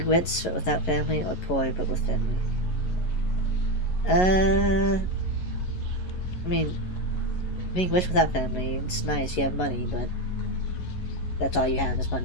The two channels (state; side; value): late; right; 11 ms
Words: rich but without family or poor but with family? I mean, being rich without family, it's nice, you have money, but that's all you have is